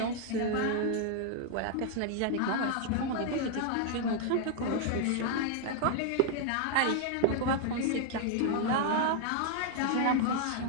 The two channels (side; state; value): both; different; correlation 0.00